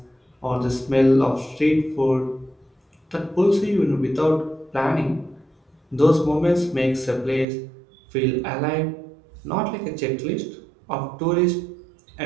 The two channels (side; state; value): left; drops out; at 7.5 s